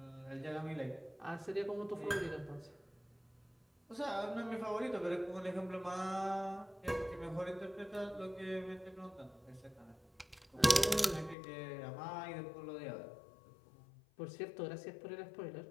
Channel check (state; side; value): drops out; right; at 11.4 s